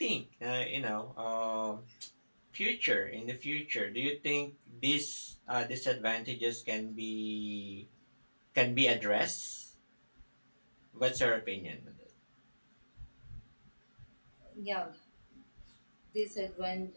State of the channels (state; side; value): inverted; both; correlation -1.00